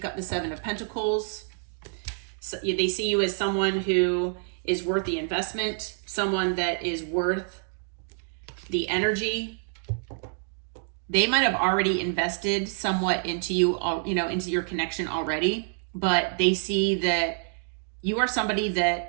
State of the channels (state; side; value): silent; left; digital silence